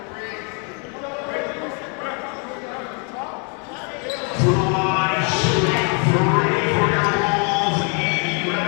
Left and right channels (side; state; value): right; quieter; 37.1 dB